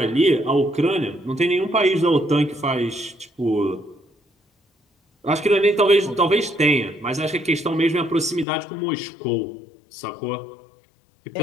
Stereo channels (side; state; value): right; drops out; at 8.5 s